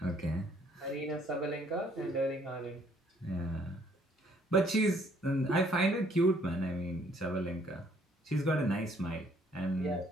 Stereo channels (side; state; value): both; normal; correlation 0.64